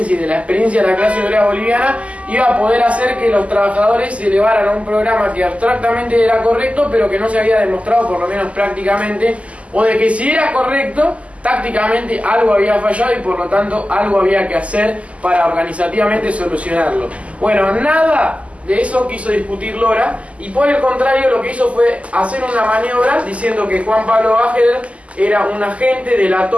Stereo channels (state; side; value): late; left; 0.064 ms